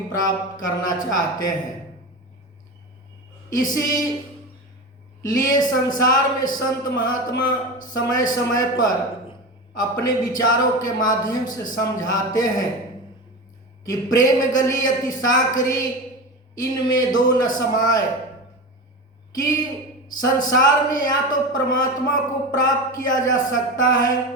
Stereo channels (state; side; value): normal; both; correlation 0.24